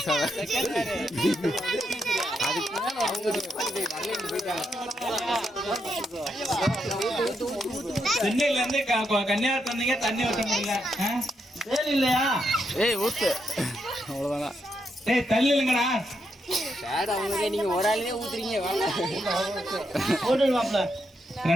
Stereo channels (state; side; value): normal; both; correlation 0.81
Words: ஆக. சென்னையில இருந்து கன்னியாகுமரி வந்தீங்க, தண்ணி ஊற்ற முடியல. வேலை இல்லையா? ஏய் ஊத்து, அவ்வளவுதான். ஏய் தள்ளி இல்லைங்கடா. நீங்க ஒரு ஆளுமே ஊத்துறீங்க.